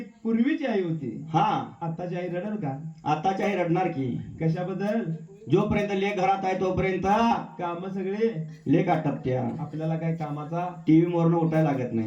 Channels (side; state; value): both; identical; correlation 1.00